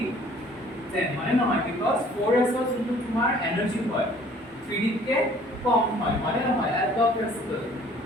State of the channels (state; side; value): normal; both; correlation 0.55